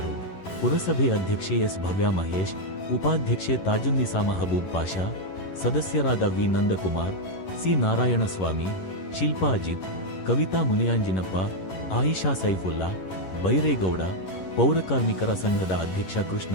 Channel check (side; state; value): right; late; 11 ms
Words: ಪುರಸಭೆ ಅಧ್ಯಕ್ಷೆ ಎಸ್ ಭವ್ಯಾಮಹೇಶ್, ಉಪಾಧ್ಯಕ್ಷೆ ತಾಜುನ್ನಿಸಾ ಮಹಬೂಬ್ ಪಾಷಾ, ಸದಸ್ಯರಾದ ವಿ ನಂದಕುಮಾರ್, ಸಿ ನಾರಾಯಣಸ್ವಾಮಿ, ಶಿಲ್ಪಾ ಅಜಿತ್, ಕವಿತಾ ಮುನಿಯಾಂಜಿನಪ್ಪ, ಆಯಿಷಾ ಸೈಫುಲ್ಲಾ, ಬೈರೇಗೌಡ, ಪೌರಕಾರ್ಮಿಕರ ಸಂಘದ ಅಧ್ಯಕ್ಷ